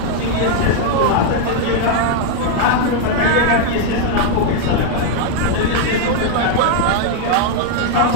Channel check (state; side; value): different; both; correlation 0.00